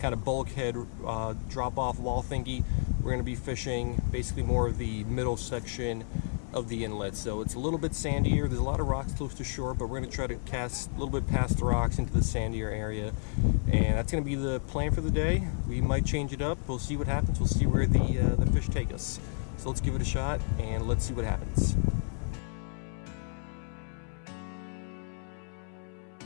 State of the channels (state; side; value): silent; right; 57 dB below the other